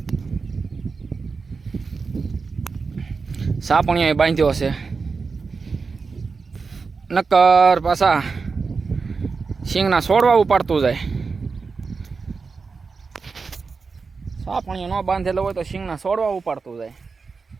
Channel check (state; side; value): quieter; left; 4.7 dB